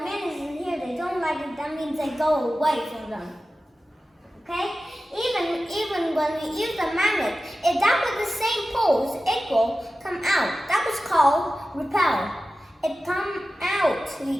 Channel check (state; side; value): normal; both; correlation 0.94